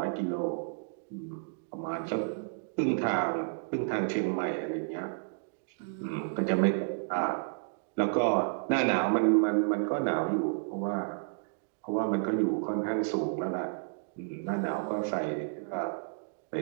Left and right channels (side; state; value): left; silent; digital silence